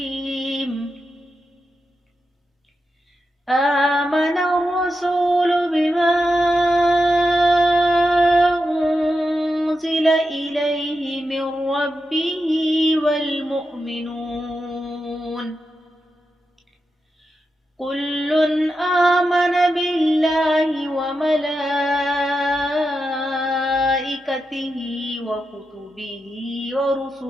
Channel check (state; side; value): normal; both; correlation 0.88